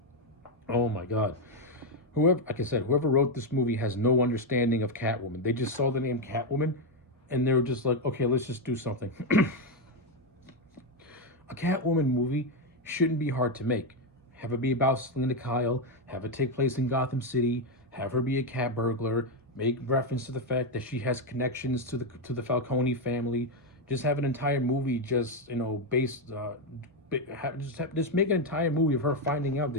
Oh my god. Like I said, whoever wrote this movie has no understanding of Catwoman. They just saw the name Catwoman and they were just like, okay, let's just do something. A Catwoman movie shouldn't be hard to make. Have it be about Selena Kyle, have it take place in Gotham City, have her be a cat burglar, make reference to the fact that she has connections to the Falcone family. Just have an entire movie just, you know, just make an entire movie of her finding out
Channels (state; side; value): normal; both; correlation 0.05